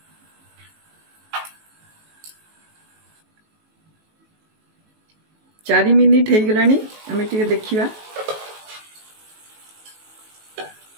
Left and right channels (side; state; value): left; late; 19 ms